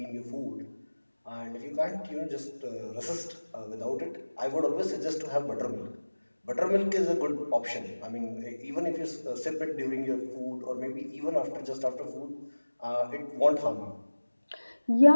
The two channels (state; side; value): inverted; both; correlation -1.00